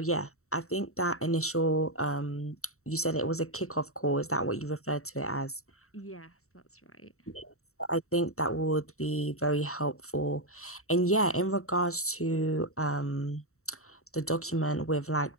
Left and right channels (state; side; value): late; right; 0.64 ms